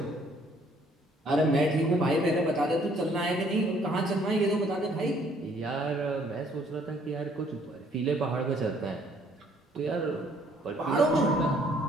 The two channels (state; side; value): normal; both; correlation 0.62